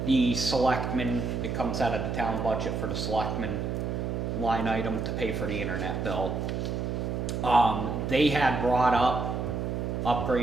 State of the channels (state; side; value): noise; right; hum, 2 dB below the sound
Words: the selectmen, it comes out of the town budget for the selectmen line item to pay for the internet bill. They had brought up